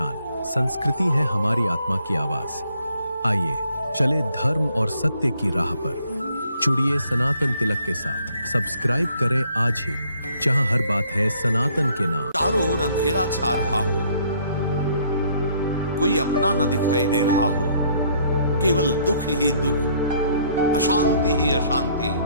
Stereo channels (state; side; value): inverted; both; correlation -0.64